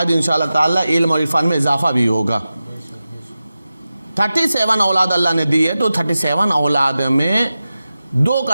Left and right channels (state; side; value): inverted; both; correlation -0.94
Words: انشاءاللہ تعالیٰ علم اور عرفان میں اضافہ بھی ہوگا۔ 37 اولاد اللہ نے دی ہے، تو 37 اولاد میں 2